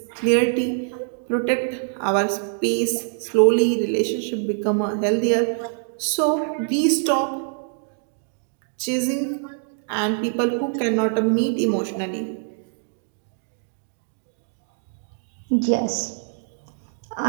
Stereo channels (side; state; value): left; silent; 63 dB below the other